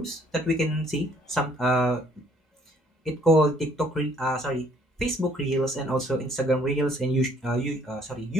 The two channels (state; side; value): normal; both; correlation 0.62